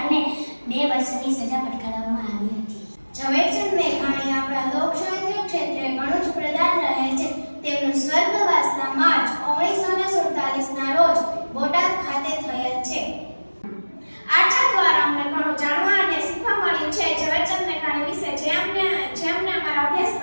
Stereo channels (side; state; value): both; inverted; correlation -1.00